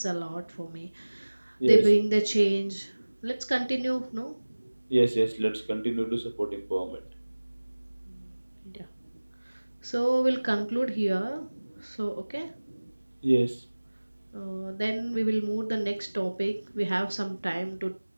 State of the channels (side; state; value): both; inverted; correlation -1.00